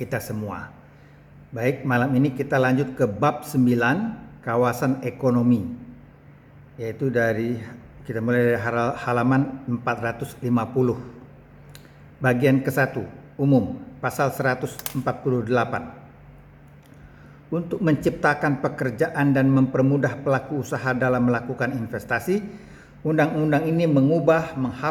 semua. Baik, malam ini kita lanjut ke bab 9, kawasan ekonomi. Yaitu kita mulai dari halaman 450. Bagian ke-1, umum, pasal 148. Untuk menciptakan pekerjaan dan mempermudah pelaku usaha dalam melakukan investasi, undang-undang ini mengubah,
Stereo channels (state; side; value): identical; both; correlation 1.00